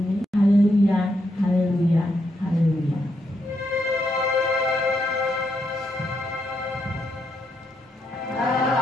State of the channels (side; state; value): both; normal; correlation 0.80